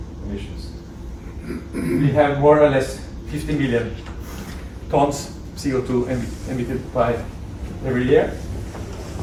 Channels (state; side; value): identical; both; correlation 1.00